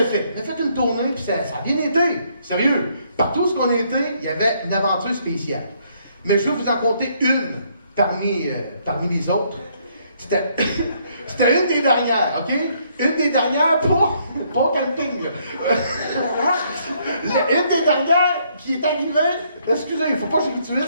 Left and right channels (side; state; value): both; inverted; correlation -0.69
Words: fait. On a fait une tournée, puis ça a bien été. Sérieux. Partout où on a été, il y avait une aventure spéciale. Mais je vais vous en compter une parmi les autres. C'était une des dernières, OK? Une des dernières pour camping. Une des dernières qui est arrivée. Excusez, il ne faut pas que je